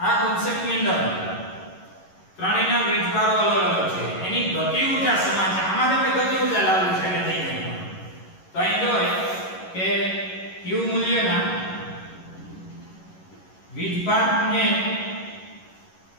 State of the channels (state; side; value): late; right; 11 ms